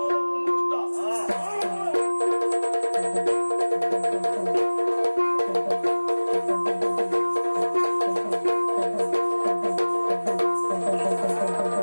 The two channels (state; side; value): inverted; both; correlation -1.00